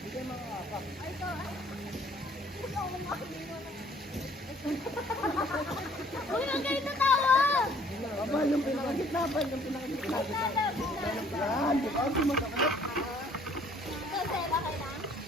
Uy, ang galing na tawa! Abal, yung pinakagitna. Yan, di ba? Hindi masakit. Kasi, bakit lang?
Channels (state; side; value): normal; both; correlation 0.59